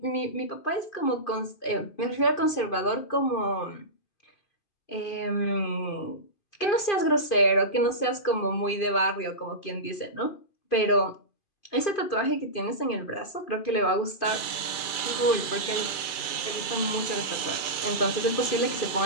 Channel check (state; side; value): late; right; 2.3 ms